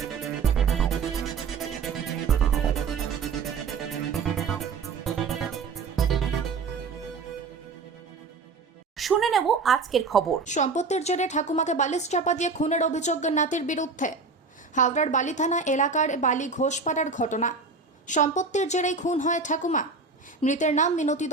নেব আজকের খবর। সম্পত্তির জেরে ঠাকুমাকে বালিশ চাপা দিয়ে খুনের অভিযোগ নাতির বিরুদ্ধে। হাওড়ার বালি থানা এলাকার বালি ঘোষপাড়ার ঘটনা। সম্পত্তির জেরেই খুন হয় ঠাকুমা। মৃতের নাম মিনতি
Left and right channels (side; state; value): left; quieter; 4.5 dB